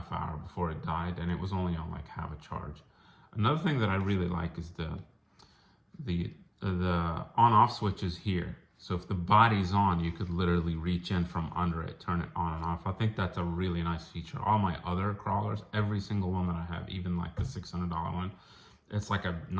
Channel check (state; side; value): identical; both; correlation 1.00